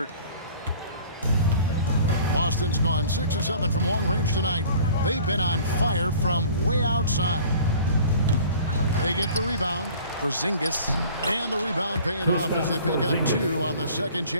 Boston's gone 6 of 7 from long range tonight. They've been on fire from way outside. They get the rebound. Porzingis, and the rebound paying off as they pick up 2 on the second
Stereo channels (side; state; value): both; inverted; correlation -0.47